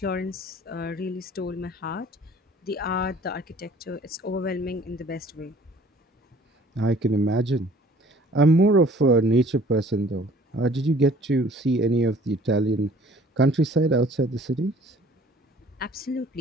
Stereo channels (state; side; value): normal; both; correlation 0.53